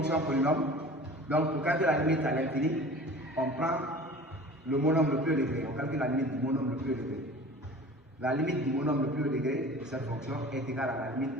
polynôme, donc pour calculer la limite à l'infini, on prend le monôme le plus élevé, on calcule la limite du monôme le plus élevé. La limite du monôme le plus haut degré de cette fonction est égale à la limite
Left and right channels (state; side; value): normal; both; correlation 0.42